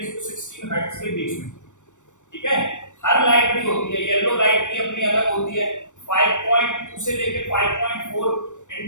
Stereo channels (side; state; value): right; late; 0.85 ms